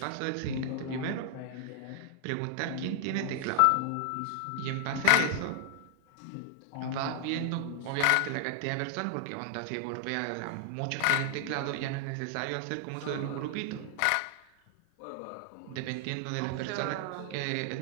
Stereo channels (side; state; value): both; different; correlation 0.00